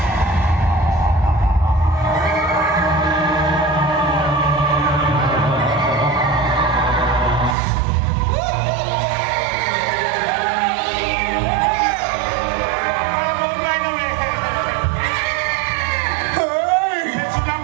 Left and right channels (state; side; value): drops out; left; at 7.6 s